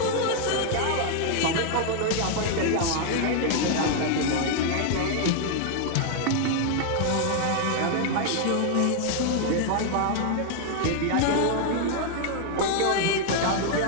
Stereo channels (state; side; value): different; both; correlation 0.00